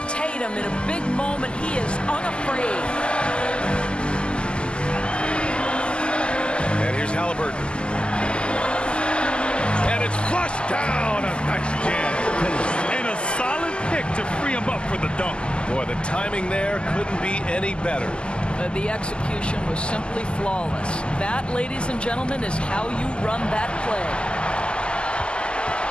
Tatum, in a big moment, he is unafraid. And here's Halliburton. And it's flushed down. A nice jam. And a solid pick to free him up for the dunk. Boy, the timing there couldn't be any better. The execution was simply flawless. That, ladies and gentlemen, is how you run that play.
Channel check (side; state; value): right; late; 0.050 ms